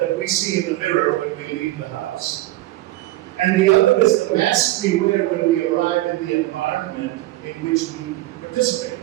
we see in the mirror when we leave the house. And the other is the mask we wear when we arrive in the environment in which we participate.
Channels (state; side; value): quieter; left; 17.2 dB